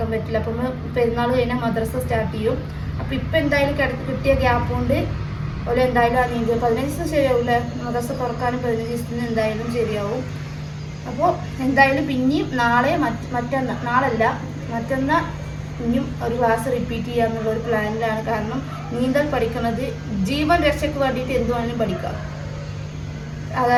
പറ്റില്ല. അപ്പം പെരുന്നാൾ കഴിഞ്ഞാൽ മദ്രസ സ്റ്റാർട്ട് ചെയ്യും. അപ്പോൾ ഇപ്പം എന്തായാലും കിട്ടിയ ഗ്യാപ്പ് കൊണ്ട് ഒരു എന്തായാലും ആ നീന്തൽ 15 ദിവസം ശരിയാവില്ല. മദ്രസ തുറക്കാനും 15 ദിവസത്തിന് എന്തായാലും ശരിയാവും. അപ്പോൾ എന്തായാലും പിന്നെയും മറ്റന്നാൾ ഇനിയും ഒരു ക്ലാസ് റിപ്പീറ്റ് ചെയ്യാന്നുള്ളൊരു പ്ലാനിലാണ്. കാരണം നീന്തൽ പഠിക്കുന്നത് ജീവൻ രക്ഷയ്ക്ക് വേണ്ടിയിട്ട് എന്ത് വേണമെങ്കിലും പഠിക്കാം.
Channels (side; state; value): both; identical; correlation 1.00